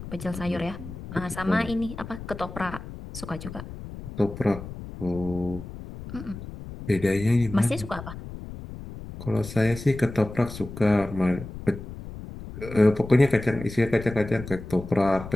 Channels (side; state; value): left; noise; rumble, 12 dB below the sound